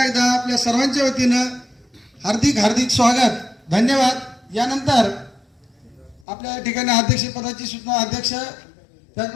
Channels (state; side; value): drops out; right; at 6.2 s